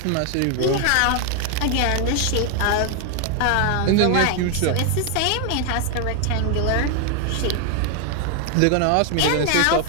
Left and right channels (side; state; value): both; different; correlation 0.01